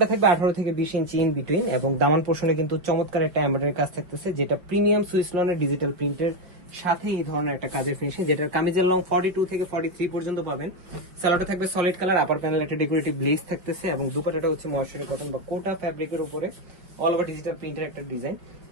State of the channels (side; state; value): left; late; 5.3 ms